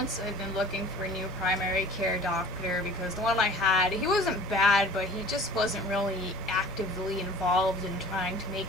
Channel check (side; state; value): both; normal; correlation 0.45